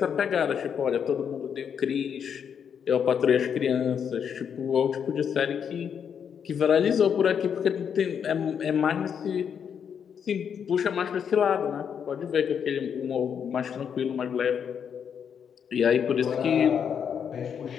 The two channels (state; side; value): quieter; right; 7.6 dB